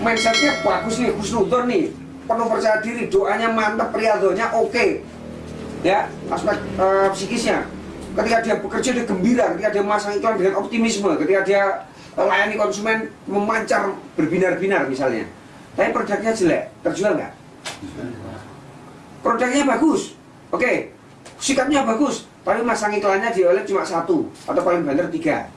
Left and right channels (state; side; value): identical; both; correlation 1.00